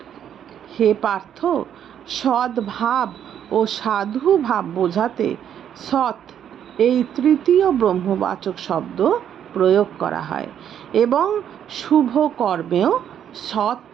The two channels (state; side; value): quieter; left; 9.4 dB